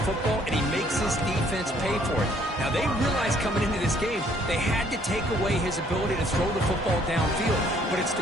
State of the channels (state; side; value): normal; both; correlation 0.63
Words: football, and he makes his defense pay for it. Now, they realized coming into this game, they had to take away his ability to throw the football downfield. But it's